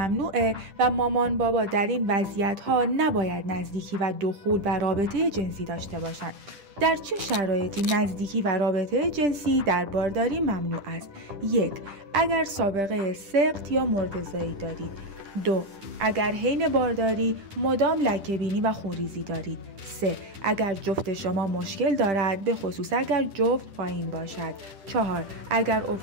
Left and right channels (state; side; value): late; left; 10 ms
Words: و مامان بابا در این وضعیت‌ها نباید نزدیکی و دخول و رابطه جنسی داشته باشند. در چه شرایطی نزدیکی و رابطه جنسی در بارداری ممنوع است؟ 1. اگر سابقه سقط یا مرده‌زایی دارید. 2. اگر حین بارداری مدام لکه‌بینی و خونریزی دارید. 3. اگر جفت شما مشکل دارد، به خصوص اگر جفت پایین باشد. 4. اگر